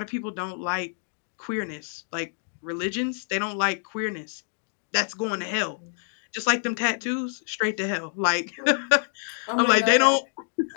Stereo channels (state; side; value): silent; right; digital silence